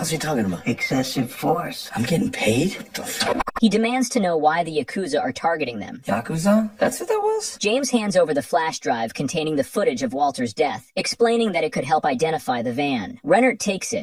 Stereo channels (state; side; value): identical; both; correlation 1.00